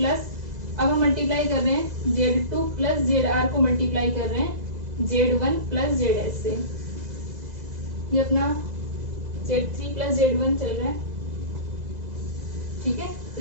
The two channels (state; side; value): late; left; 2.0 ms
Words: अब हम मल्टीप्लाई कर रहे हैं Z two plus Z R को मल्टीप्लाई कर रहे हैं Z one plus Z S से। ये अपना Z three plus Z one चल रहा है। ठीक है,